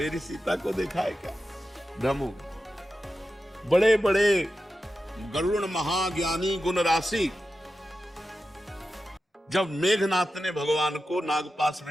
सीता को देखा है क्या? भ्रम हो गया। बड़े बड़े गरुड़ महाज्ञानी गुण राशि, जब मेघनाथ ने भगवान को नागपाश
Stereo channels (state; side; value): normal; both; correlation 0.92